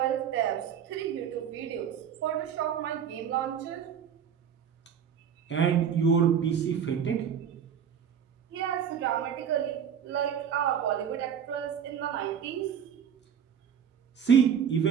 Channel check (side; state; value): left; quieter; 8.1 dB